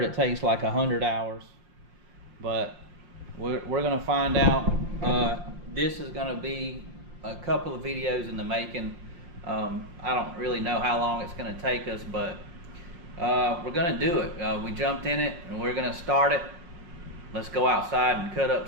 it takes like 100 hours, but we're gonna find out. This is gonna be a couple of videos in the making. I don't really know how long it's gonna take us, but we're gonna do it. We jumped in it and we're gonna start it. Let's go outside and cut up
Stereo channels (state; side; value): late; left; 5.7 ms